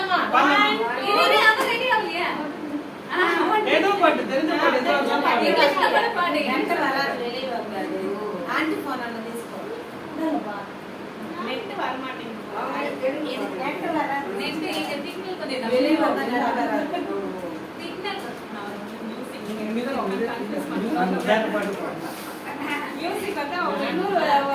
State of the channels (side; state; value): both; identical; correlation 1.00